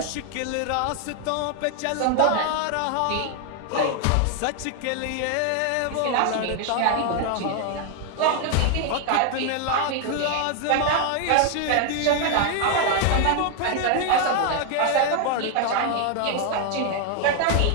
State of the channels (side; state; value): both; different; correlation 0.00